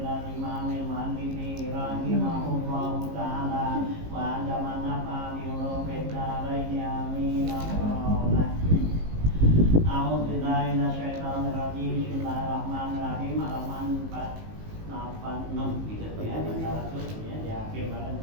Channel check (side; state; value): left; late; 19 ms